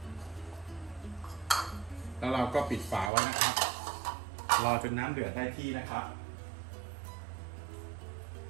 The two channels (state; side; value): drops out; left; at 3.1 s